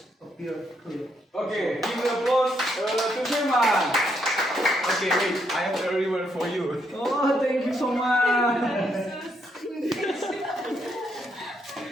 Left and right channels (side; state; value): both; normal; correlation 0.76